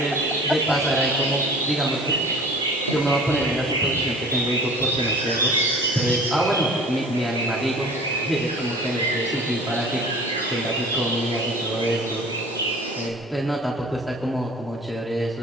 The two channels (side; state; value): both; normal; correlation 0.44